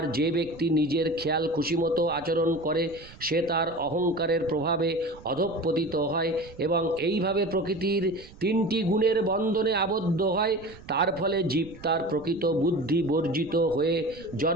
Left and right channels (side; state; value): right; noise; rumble, 20 dB below the sound